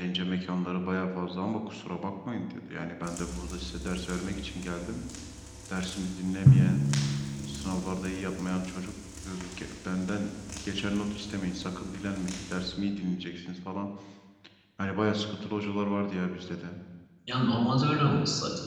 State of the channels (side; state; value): both; identical; correlation 1.00